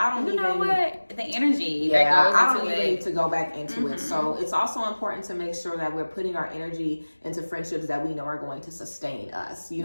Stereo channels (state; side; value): inverted; both; correlation -1.00